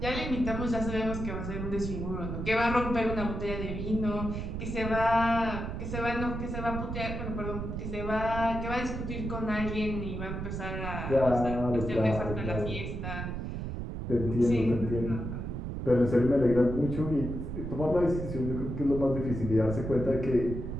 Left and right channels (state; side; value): noise; right; rumble, 5 dB below the sound